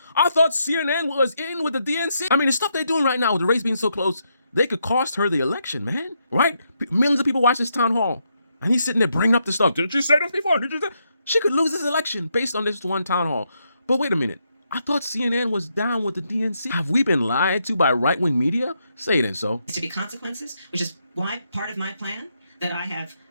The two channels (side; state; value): both; inverted; correlation -0.79